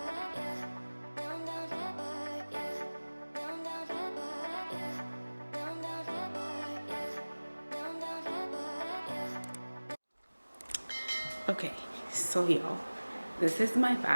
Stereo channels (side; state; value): both; inverted; correlation -1.00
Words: Okay, so y'all, this is my